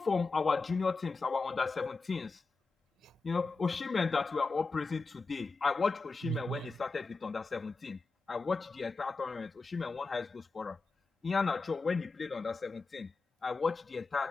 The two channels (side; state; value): right; quieter; 4.0 dB